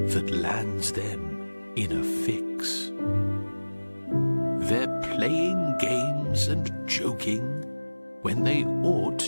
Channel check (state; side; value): inverted; both; correlation -1.00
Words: that lands them in a fix. They're playing games and joking when they ought